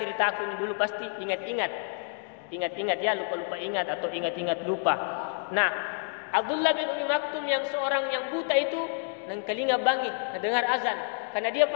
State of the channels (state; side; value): silent; right; 59 dB below the other